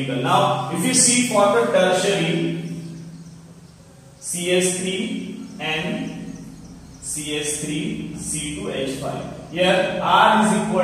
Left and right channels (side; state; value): both; identical; correlation 1.00